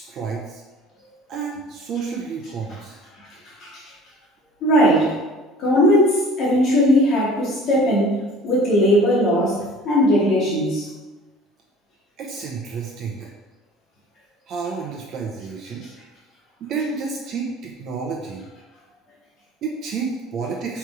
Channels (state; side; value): normal; both; correlation 0.46